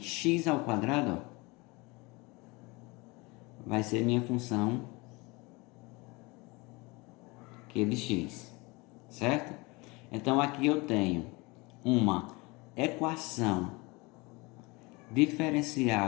ao quadrado, ó, vai ser minha função q de x, certo? Então aqui eu tenho uma equação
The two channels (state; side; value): quieter; right; 25.4 dB